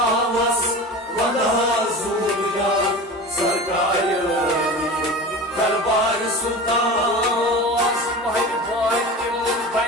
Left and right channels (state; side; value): normal; both; correlation 0.33